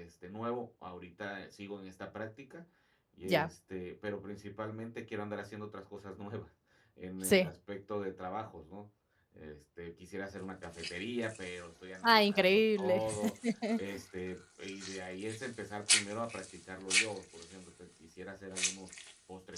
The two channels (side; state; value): both; identical; correlation 1.00